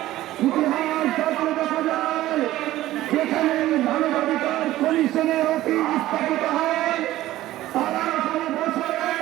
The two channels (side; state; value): left; quieter; 15.2 dB